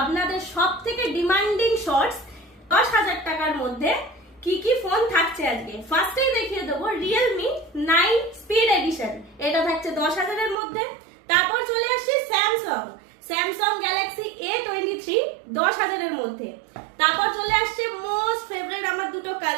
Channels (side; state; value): left; drops out; at 10.6 s